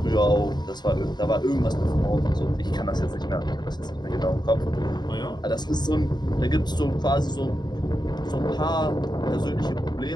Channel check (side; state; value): right; late; 0.21 ms